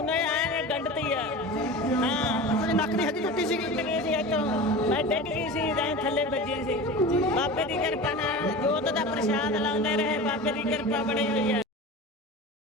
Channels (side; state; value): both; normal; correlation 0.32